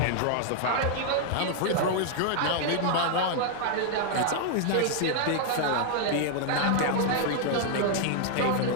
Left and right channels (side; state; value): both; different; correlation 0.00